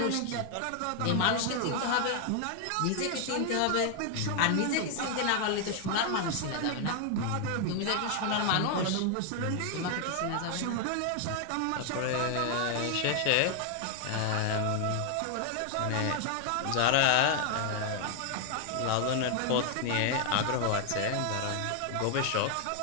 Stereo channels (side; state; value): both; different; correlation 0.00